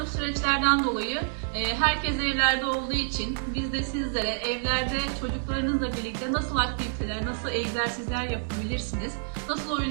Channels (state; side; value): silent; left; digital silence